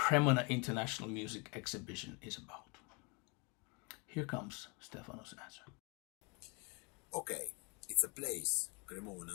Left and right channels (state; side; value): quieter; right; 31.0 dB